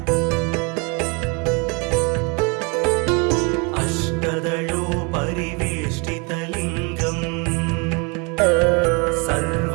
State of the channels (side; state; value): left; quieter; 31.7 dB